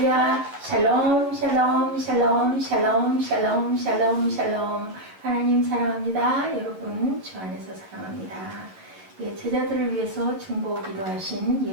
샬롬 샬롬 샬롬 샬롬 샬롬 샬롬 샬롬. 하나님 사랑합니다. 여러분 주 안에서 사랑합니다. 예, 제자들을 위해서 중보 기도하신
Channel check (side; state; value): left; late; 11 ms